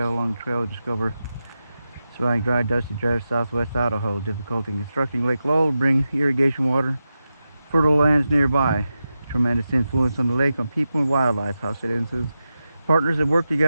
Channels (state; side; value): inverted; both; correlation -0.91